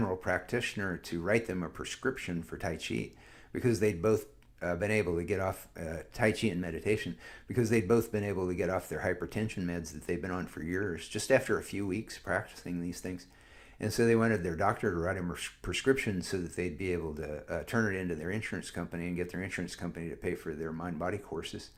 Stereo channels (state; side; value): identical; both; correlation 1.00